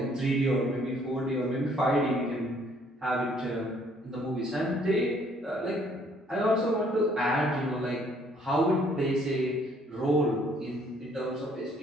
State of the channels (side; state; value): both; normal; correlation 0.63